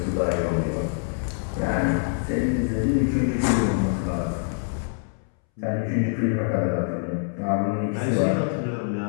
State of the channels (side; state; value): right; silent; 62 dB below the other